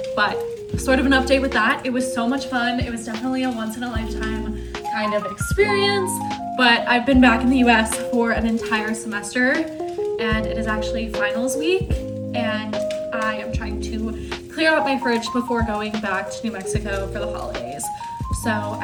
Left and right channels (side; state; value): both; identical; correlation 1.00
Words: but sort of an update with that. It was so much fun. It was definitely a once in a lifetime kind of experience, but I've been back in the US for an entire semester and it is actually finals week and I am trying to clear out my fridge before going back to New Mexico for the holidays. So